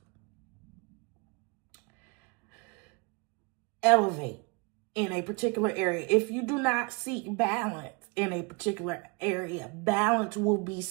elevate in a particular area, if you do not seek balance in a particular area, balance will be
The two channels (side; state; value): left; quieter; 29.6 dB